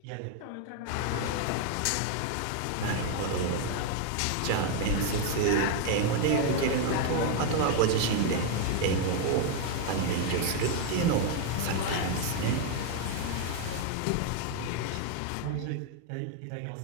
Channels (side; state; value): both; different; correlation 0.01